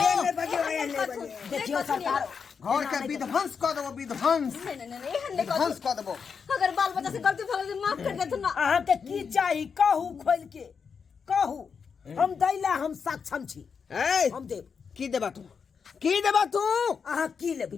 देखियो सरकार घर के विध्वंस कर देबो नहीं विध्वंस कर देबो अगर बाल बच्चा से गलती भगल से माफ कर दे तू ना अहाँ के की चाही कहू खोल के कहू हम दैला हम सक्षम छी हम देब की देबा तू अहाँ की लेबै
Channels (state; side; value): quieter; right; 6.1 dB